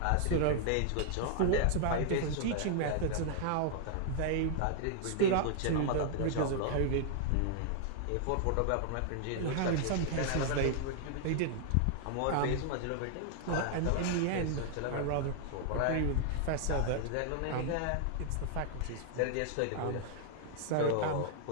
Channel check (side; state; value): both; different; correlation -0.01